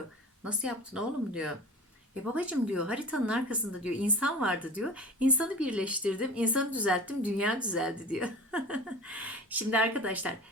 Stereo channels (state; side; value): normal; both; correlation 0.37